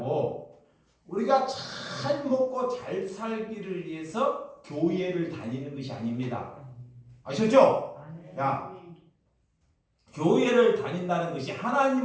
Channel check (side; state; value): both; identical; correlation 1.00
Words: 우리가 잘 먹고 잘 살기를 위해서 교회를 다니는 것이 아닙니다. 아셨죠? 야, 교회를 다닌다는 것이